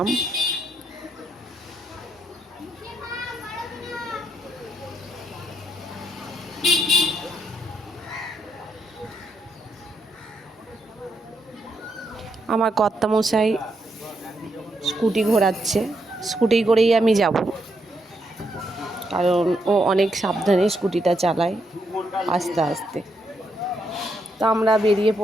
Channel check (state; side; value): normal; both; correlation 0.78